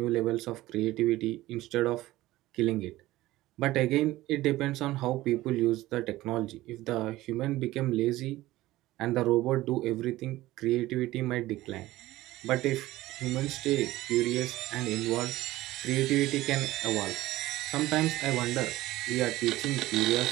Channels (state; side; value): quieter; left; 16.9 dB